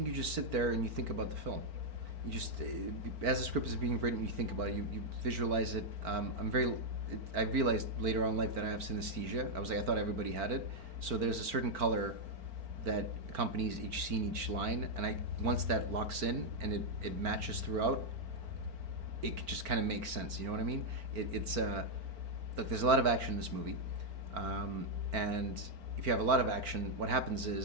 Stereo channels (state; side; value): late; left; 4.4 ms